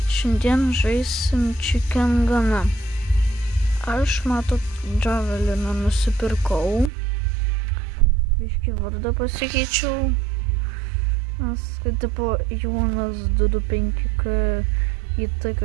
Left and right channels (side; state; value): left; drops out; at 6.9 s